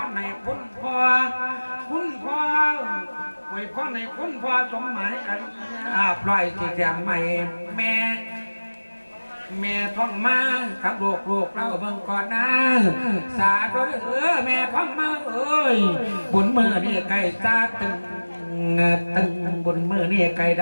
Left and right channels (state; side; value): inverted; both; correlation -1.00